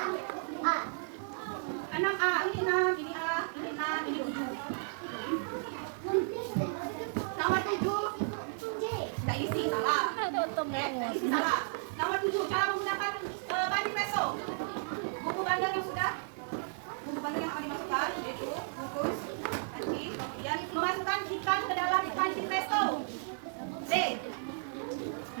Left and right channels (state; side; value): silent; left; 55 dB below the other